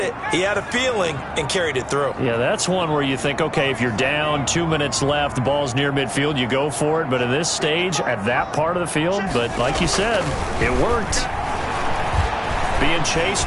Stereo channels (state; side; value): identical; both; correlation 1.00